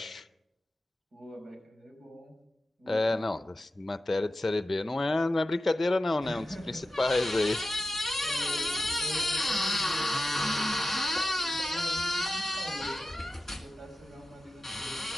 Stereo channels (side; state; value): both; normal; correlation 0.93